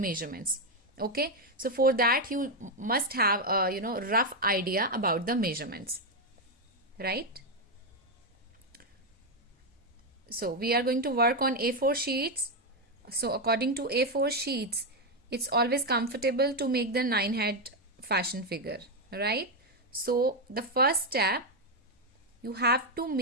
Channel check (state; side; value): normal; both; correlation 0.04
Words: Okay, so for that you must have a rough idea about the measurements, right? So we are going to work on A4 sheets. So according to A4 sheets, it's always comfortable to make the 9 head fashion figure, right? So the first step, you have to